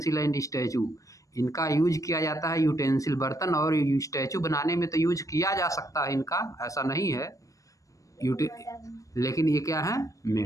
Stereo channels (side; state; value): right; late; 0.16 ms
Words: and statue, इनका यूज किया जाता है यूटेंसिल बर्तन और स्टैचू बनाने में तो यूज किया जा सकता है इनका, ऐसा नहीं है लेकिन ये क्या है?